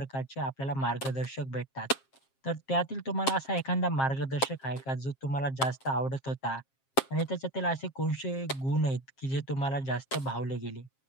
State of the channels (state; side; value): late; right; 7.5 ms